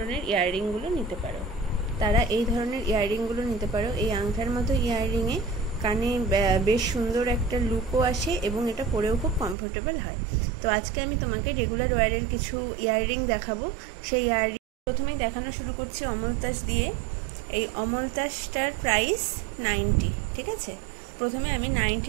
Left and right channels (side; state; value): left; drops out; at 9.6 s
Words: ইয়াররিংগুলো নিতে পারো। এই আংটার মতো ইয়াররিংয়ে কানে বেশ সুন্দর একটা লুকও আসে এবং এটা পরেও খুব কমফোর্টেবল হয়। তো আজকে আমি তোমাকে রেগুলার ওয়্যারের কিছু ইয়াররিং দেখাবো। সেই ইয়াররিং প্রথমেই দেখানো শুরু করছি অমলতাস দিয়ে। এই অমলতাসটার প্রাইস 90, ঠিক আছে। প্রথমে আমি